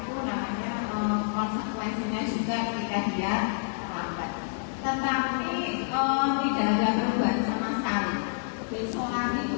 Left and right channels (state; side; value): silent; right; 59 dB below the other